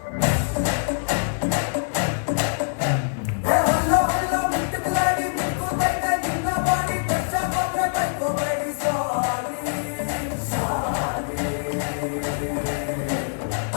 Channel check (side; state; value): right; silent; digital silence